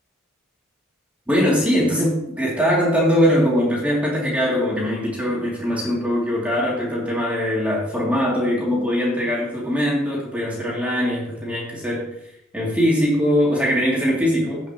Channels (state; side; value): normal; both; correlation 0.64